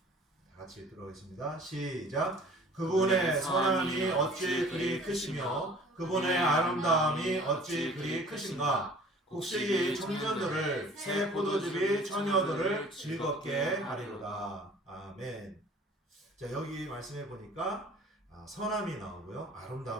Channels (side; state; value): both; normal; correlation 0.49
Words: 들어가겠습니다. 시작. 그분의 선함이 어찌 그리 크시며 그분의 아름다움이 어찌 그리 크신가. 곡식이 청년들을 새 포도즙이 처녀들을 즐겁게 하리로다. 아멘. 자, 여기 말씀해 보니까 선함이 나오고요,